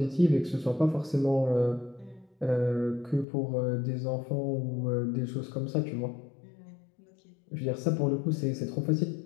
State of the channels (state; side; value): drops out; right; at 3.2 s